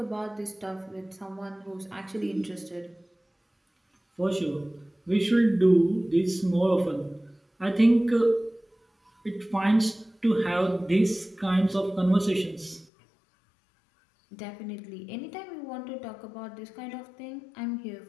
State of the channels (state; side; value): drops out; right; at 12.9 s